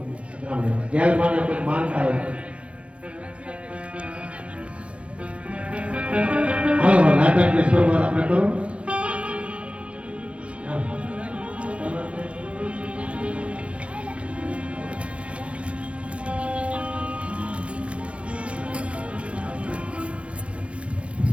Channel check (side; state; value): left; late; 0.061 ms